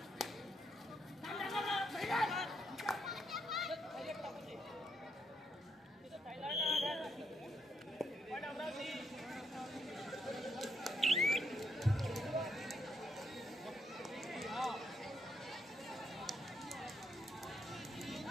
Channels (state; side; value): normal; both; correlation 0.77